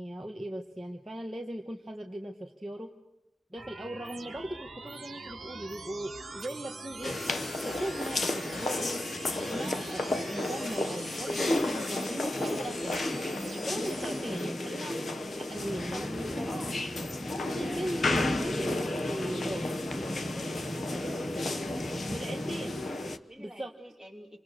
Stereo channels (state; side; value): normal; both; correlation 0.90